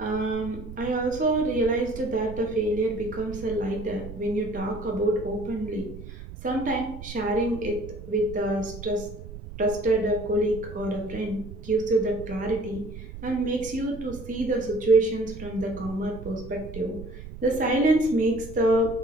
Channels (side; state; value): right; noise; rumble, 12 dB below the sound